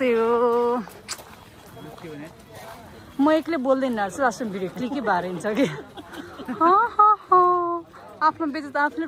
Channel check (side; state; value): both; identical; correlation 1.00